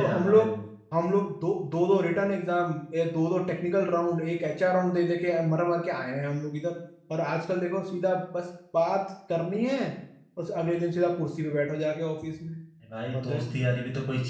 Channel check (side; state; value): both; identical; correlation 1.00